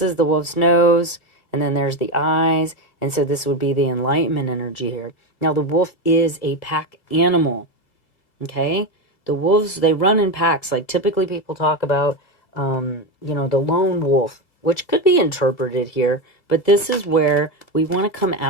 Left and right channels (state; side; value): late; right; 2.0 ms